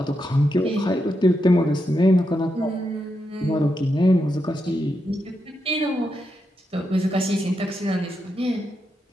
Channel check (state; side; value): normal; both; correlation 0.84